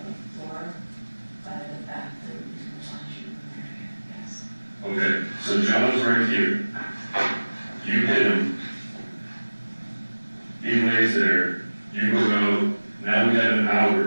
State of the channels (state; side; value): inverted; both; correlation -1.00